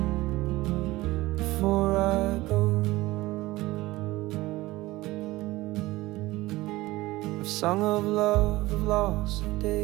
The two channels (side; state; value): left; quieter; 19.0 dB